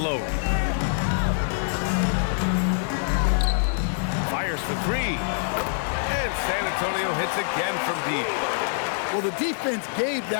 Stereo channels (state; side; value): silent; right; 62 dB below the other